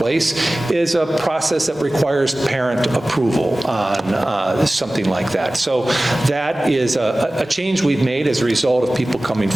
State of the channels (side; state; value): both; normal; correlation 0.97